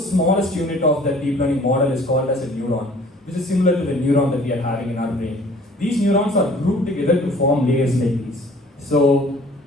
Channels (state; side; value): normal; both; correlation 0.52